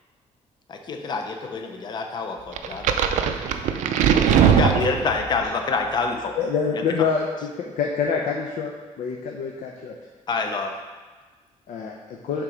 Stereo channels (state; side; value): normal; both; correlation 0.30